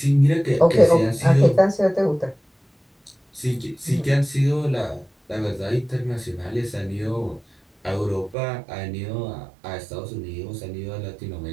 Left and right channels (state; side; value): drops out; left; at 8.3 s